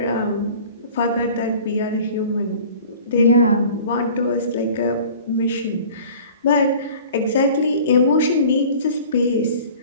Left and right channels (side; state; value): both; inverted; correlation -0.45